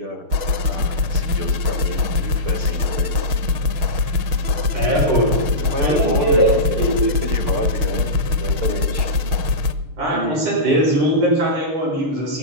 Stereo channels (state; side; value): late; left; 6.5 ms